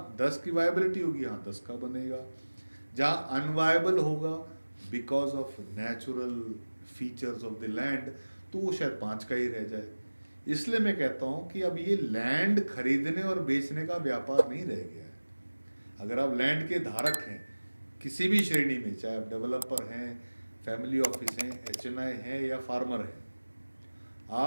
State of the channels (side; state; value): both; inverted; correlation -1.00